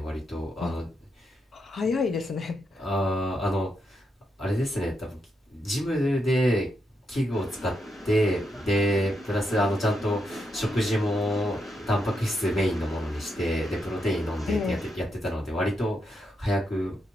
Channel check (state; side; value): normal; both; correlation 0.82